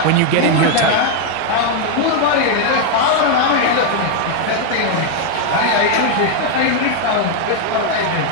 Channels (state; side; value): different; both; correlation 0.00